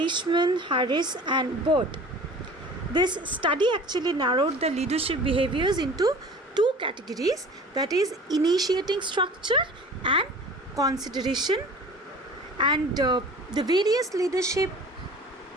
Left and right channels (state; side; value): normal; both; correlation 0.43